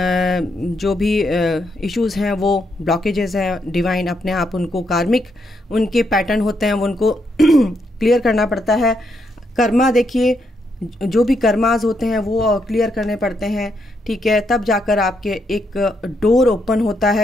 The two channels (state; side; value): normal; both; correlation 0.78